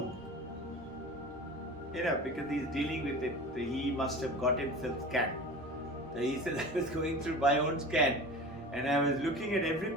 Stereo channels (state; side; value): normal; both; correlation 0.35